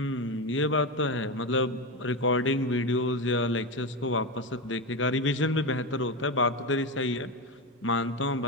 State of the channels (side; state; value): both; normal; correlation 0.16